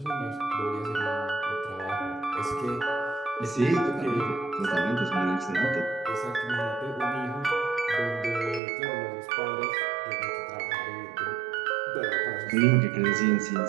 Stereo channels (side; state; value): left; drops out; at 8.6 s